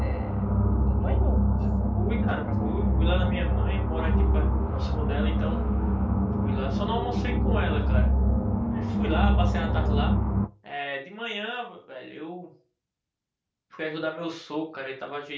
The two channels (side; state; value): both; identical; correlation 1.00